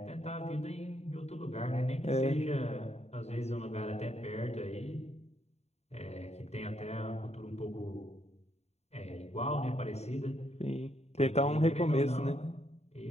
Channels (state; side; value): late; right; 0.31 ms